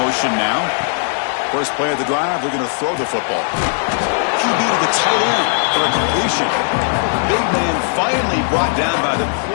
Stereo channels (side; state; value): right; silent; 63 dB below the other